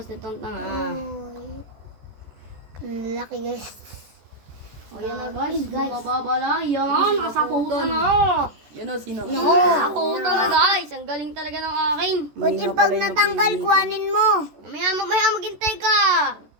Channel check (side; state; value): left; late; 14 ms